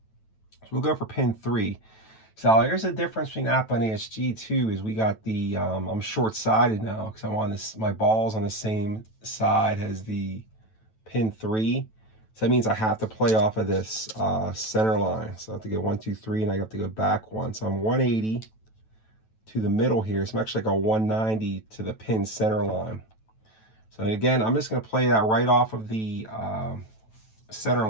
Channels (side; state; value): right; late; 9.1 ms